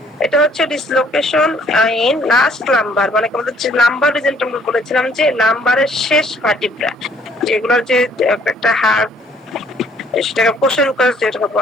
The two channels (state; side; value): normal; both; correlation 0.62